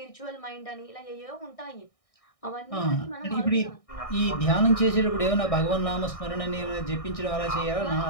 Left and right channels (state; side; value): late; right; 1.6 ms